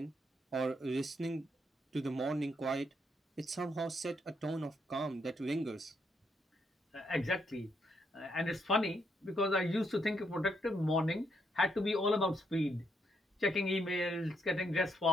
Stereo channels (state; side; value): normal; both; correlation 0.75